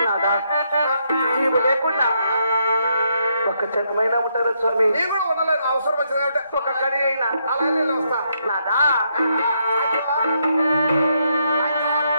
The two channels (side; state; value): both; inverted; correlation -0.77